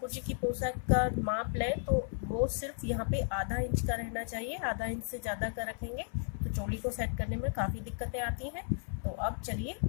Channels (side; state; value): right; silent; 55 dB below the other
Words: जी की पोशाक का माप लें तो वो सिर्फ यहाँ पे आधा इंच का रहना चाहिए। आधा इंच से ज़्यादा का रखेंगे तो चोली को सेट करने में काफ़ी दिक्कतें आती हैं। तो अब चलिए